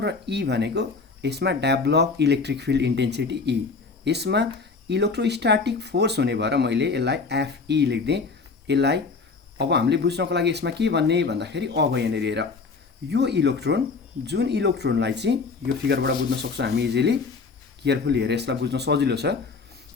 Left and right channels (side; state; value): right; quieter; 4.5 dB